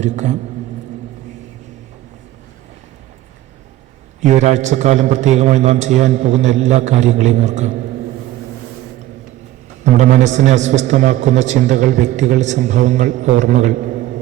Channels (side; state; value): left; quieter; 14.7 dB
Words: ഈ ഒരാഴ്ചക്കാലം പ്രത്യേകമായി നാം ചെയ്യാൻ പോകുന്ന എല്ലാ കാര്യങ്ങളെയും ഓർക്കാം. നമ്മുടെ മനസ്സിനെ അസ്വസ്ഥമാക്കുന്ന ചിന്തകൾ, വ്യക്തികൾ, സംഭവങ്ങൾ, ഓർമ്മകൾ,